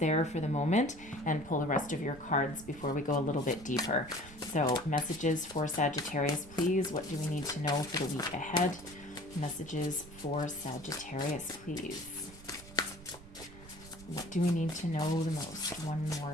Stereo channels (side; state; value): right; noise; rumble, 18 dB below the sound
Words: for the moment and pull the rest of your cards before we go a little bit deeper. So messages for Sagittarius, please. What do we need to know for the week ahead? Messages for Sagittarius, please. What do we need to know the most? One